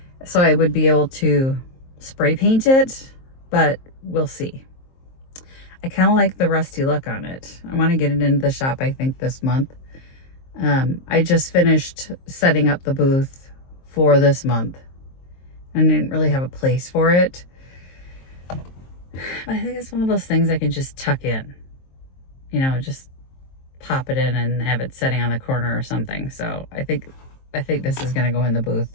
so I would be able to spray paint it, but we'll see. I kind of like the rusty look on it. I want to get it into the shop, I think, this month. I just finished setting up the booth for this month. I didn't really have a place for it, but I think it's one of those things I can just tuck in. You know, just pop it in and have it sitting on the corner or something. So I think this is going to go in the booth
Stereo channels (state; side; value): late; right; 23 ms